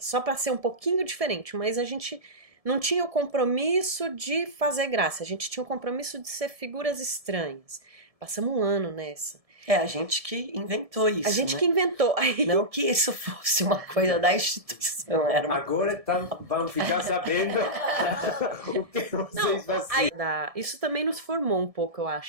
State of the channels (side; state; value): left; late; 1.7 ms